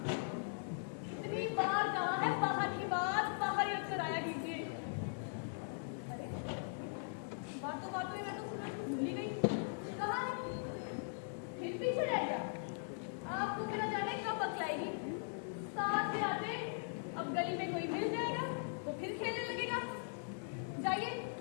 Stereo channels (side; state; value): right; silent; digital silence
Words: इतनी बार कहा है बाहर की बात बाहर ही रखकर आया कीजिए। अरे बातों बातों में मैं तो सूरज को भूल ही गई। कहाँ है? फिर पीछे रह गया। आपको बिना जाने कब बतलाएगी? साथ में आते अब गली में कोई मिल जाएगा तो फिर खेलने लगेगा। जाइए